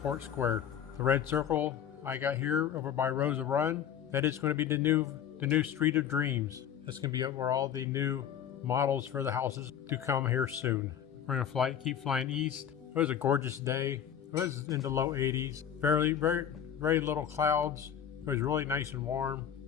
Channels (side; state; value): right; quieter; 9.0 dB